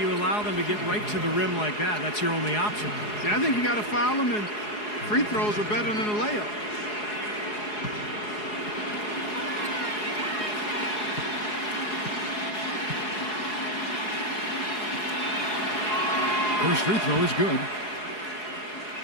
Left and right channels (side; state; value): right; late; 4.8 ms